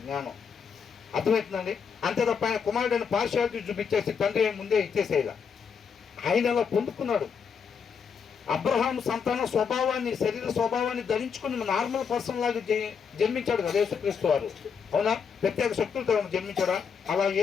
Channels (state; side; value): quieter; right; 6.5 dB